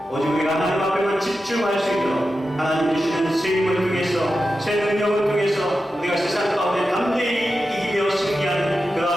오직 우리가 하나님 앞에만 집중할 수 있도록 하나님 주시는 새 힘을 통해서 새 능력을 통해서 우리가 세상 가운데 담대히 이기며 승리하는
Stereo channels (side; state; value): both; normal; correlation 0.91